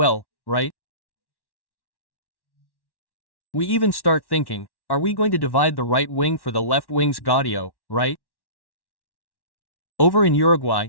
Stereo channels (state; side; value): late; right; 1.1 ms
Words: right? We even start thinking, are we going to divide the right wing for the left wing's Gaudio, right? Over in Uruguay,